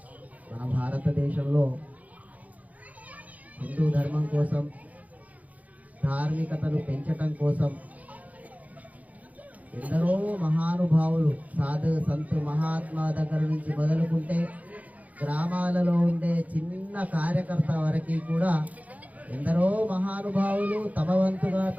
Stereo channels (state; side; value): late; left; 0.074 ms